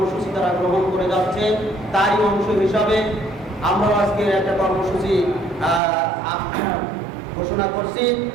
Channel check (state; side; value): drops out; left; at 5.8 s